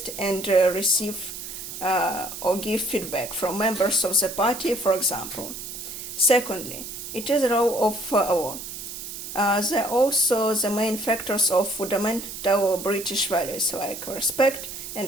and receive or give feedback from members of the party, for example. Secondly, it is the role of law. They are also the main factors of fundamental British values like respect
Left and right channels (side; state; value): right; noise; hiss, 9 dB below the sound